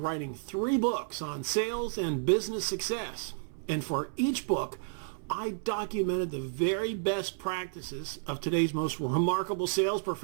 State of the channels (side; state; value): left; silent; 57 dB below the other